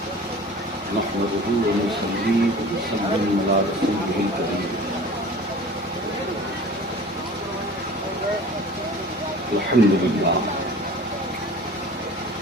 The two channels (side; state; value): both; normal; correlation 0.42